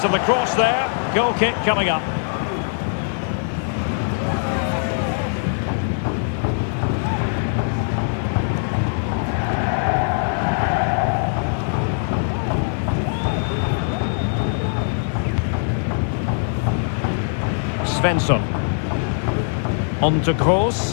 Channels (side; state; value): right; silent; digital silence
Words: of the cross there. Goal kick coming up. Svensson. On to